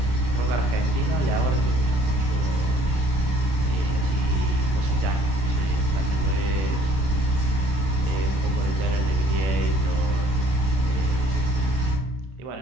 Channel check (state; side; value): late; left; 31 ms